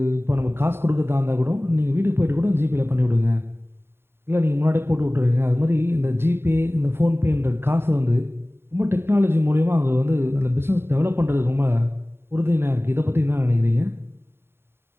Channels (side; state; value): left; late; 0.11 ms